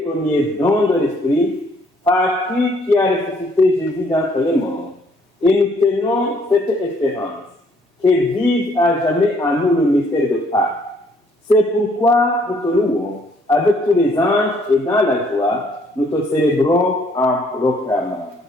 premiers dons de l'Esprit, par qui a ressuscité Jésus d'entre les morts. Et nous tenons cette espérance, que vive à jamais en nous le mystère de Pâques. C'est pourquoi nous te louons avec tous les anges et dans la joie, nous te célébrons en proclamant.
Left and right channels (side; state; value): both; normal; correlation 0.65